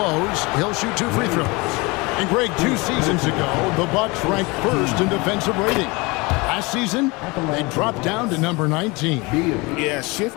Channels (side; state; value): right; quieter; 25.6 dB